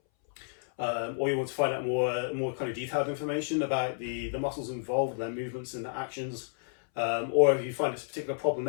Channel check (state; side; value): silent; right; 57 dB below the other